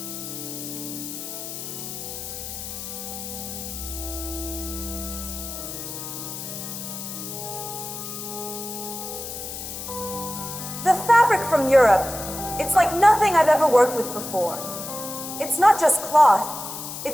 The fabric from Europe, it's like nothing I've ever worked with before. It's not just cloth,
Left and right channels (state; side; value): noise; left; hiss, 8 dB below the sound